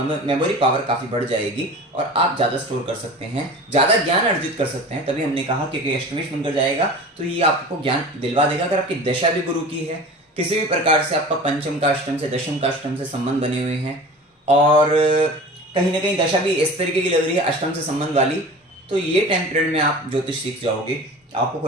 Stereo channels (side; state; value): both; normal; correlation 0.37